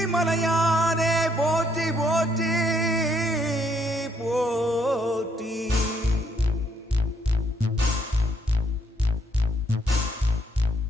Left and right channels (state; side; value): normal; both; correlation 0.70